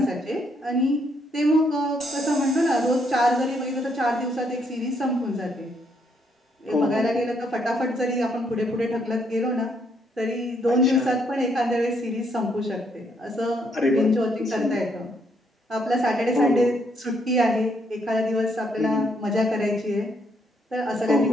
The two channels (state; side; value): normal; both; correlation 0.72